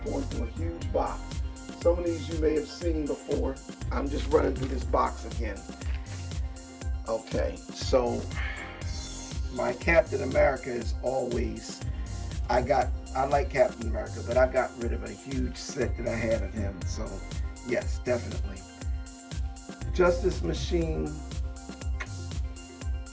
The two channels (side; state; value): both; identical; correlation 1.00